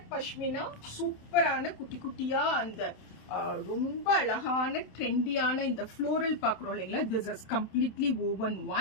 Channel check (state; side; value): late; right; 27 ms